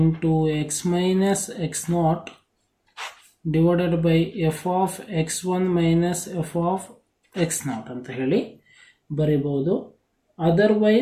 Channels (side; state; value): both; identical; correlation 1.00